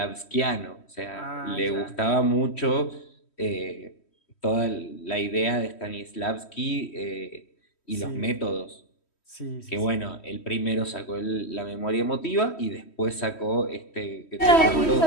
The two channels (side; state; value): right; late; 3.1 ms